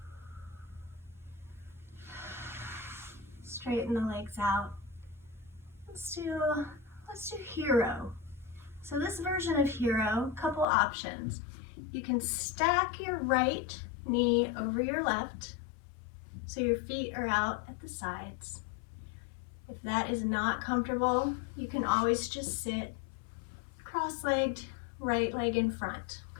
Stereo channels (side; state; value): right; drops out; at 10.7 s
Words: Straighten the legs out. Let's do hero. So this version of hero, couple options. You can stack your right knee over your left, so your feet are out at the sides. If that is not comfortable, you can always just sit cross-legged, right leg in front,